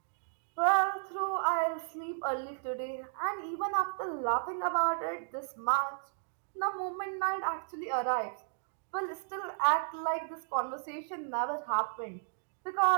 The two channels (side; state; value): left; silent; digital silence